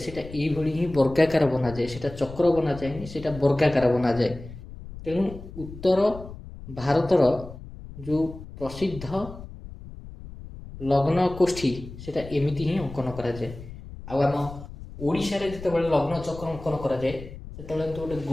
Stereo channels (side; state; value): left; noise; rumble, 14 dB below the sound